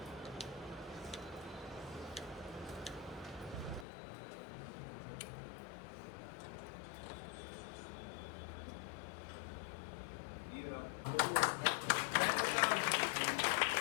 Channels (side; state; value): right; drops out; at 3.9 s